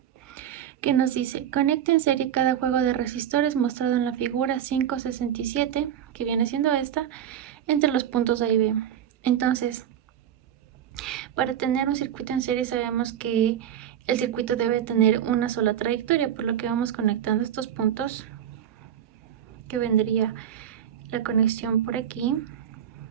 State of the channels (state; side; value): quieter; left; 9.9 dB